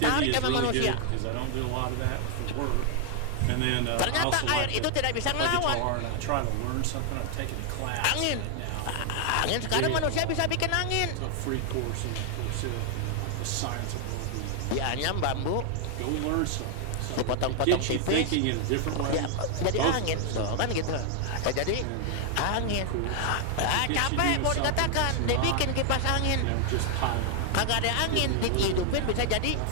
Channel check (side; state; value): both; different; correlation 0.00